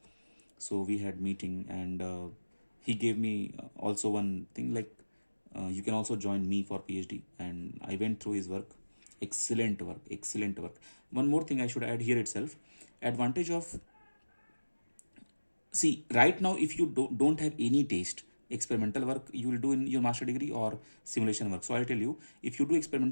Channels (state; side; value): inverted; both; correlation -1.00